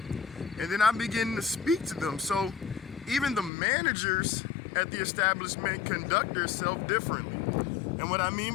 And then I begin to speak to them. So even the managers at the establishment conduct themselves differently. And what I mean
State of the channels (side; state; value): right; drops out; at 3.5 s